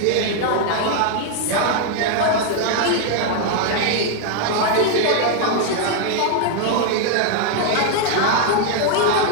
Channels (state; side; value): different; both; correlation 0.00